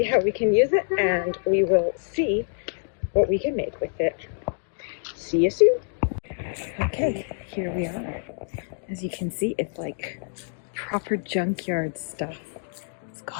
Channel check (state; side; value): silent; right; digital silence